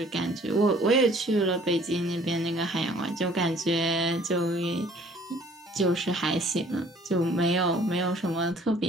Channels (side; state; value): both; normal; correlation 0.56